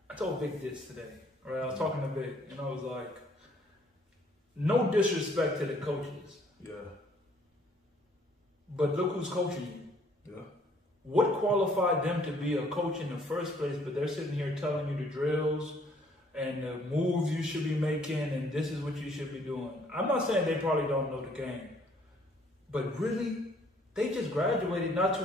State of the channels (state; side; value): normal; both; correlation 0.62